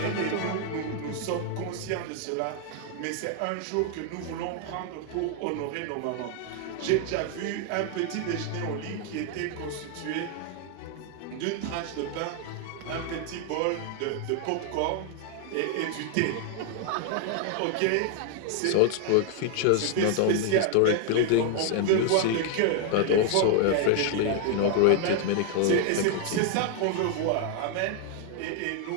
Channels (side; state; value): both; different; correlation 0.00